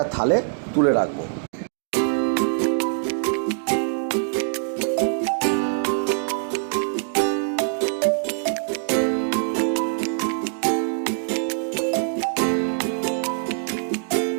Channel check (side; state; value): left; silent; digital silence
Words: থালে তুলে রাখব।